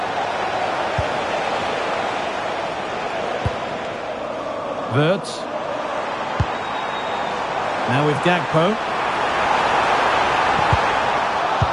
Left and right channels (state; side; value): identical; both; correlation 1.00